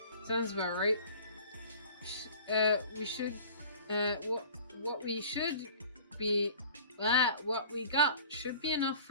Sounds about right. What we got should be enough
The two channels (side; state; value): both; inverted; correlation -0.45